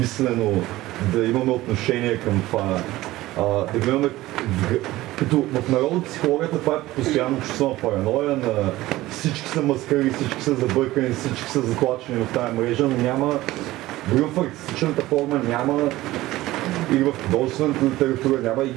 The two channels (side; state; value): left; quieter; 17.2 dB